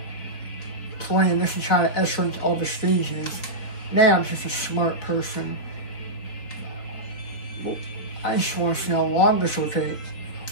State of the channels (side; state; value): right; late; 4.1 ms